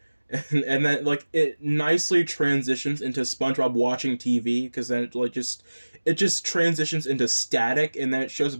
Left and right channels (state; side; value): inverted; both; correlation -1.00